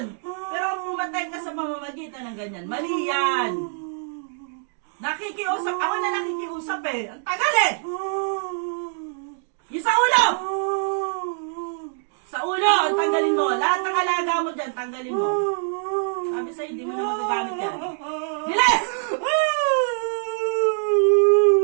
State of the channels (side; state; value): left; silent; digital silence